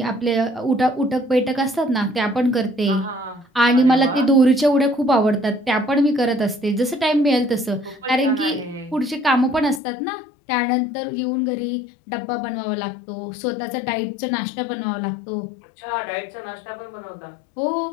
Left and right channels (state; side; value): drops out; right; at 9.8 s